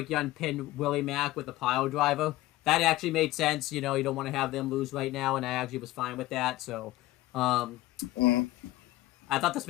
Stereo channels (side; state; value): right; quieter; 17.2 dB